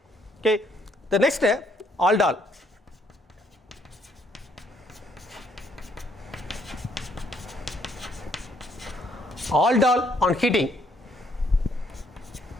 Okay. The next, aldol. Aldol on heating.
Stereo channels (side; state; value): both; normal; correlation 0.69